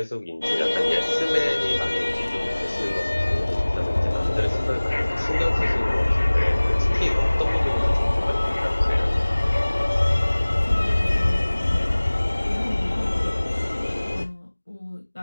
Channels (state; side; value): inverted; both; correlation -1.00